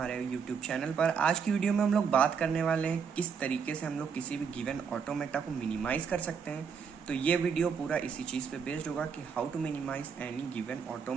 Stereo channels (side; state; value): left; quieter; 6.4 dB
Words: यूट्यूब चैनल पर। आज की वीडियो में हम लोग बात करने वाले हैं किस तरीके से हम लोग किसी भी गिवन ऑटोमेटा को मिनिमाइज कर सकते हैं। तो ये वीडियो पूरा इसी चीज़ पे बेस्ड होगा कि how to minimize any given